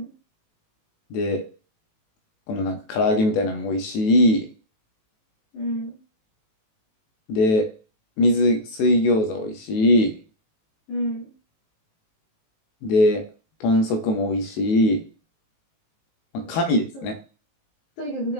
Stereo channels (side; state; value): right; late; 18 ms